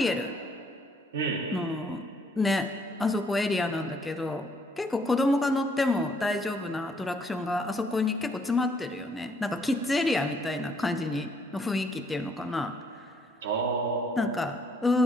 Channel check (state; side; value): normal; both; correlation 0.67